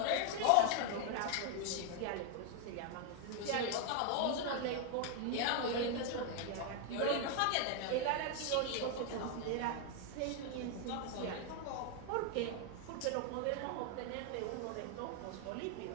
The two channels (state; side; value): different; both; correlation 0.00